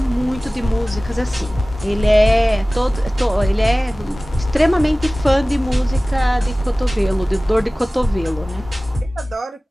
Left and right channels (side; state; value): both; normal; correlation 0.98